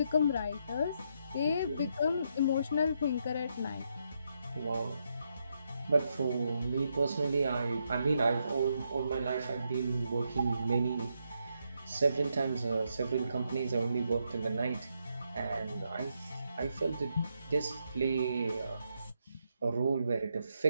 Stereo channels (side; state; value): both; inverted; correlation -0.80